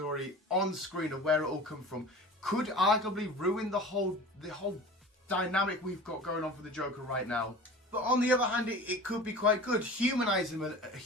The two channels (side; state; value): both; normal; correlation 0.38